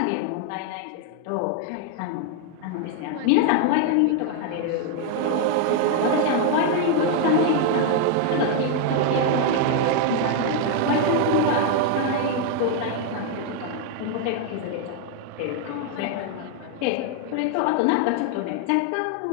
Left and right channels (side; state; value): both; different; correlation 0.00